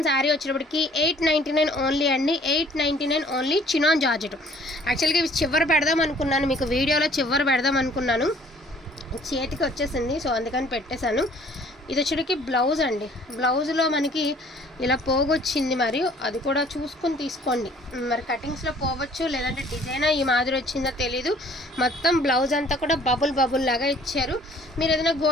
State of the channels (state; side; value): normal; both; correlation 0.56